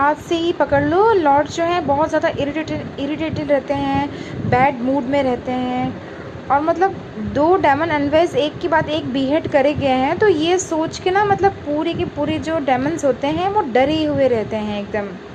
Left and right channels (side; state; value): both; identical; correlation 1.00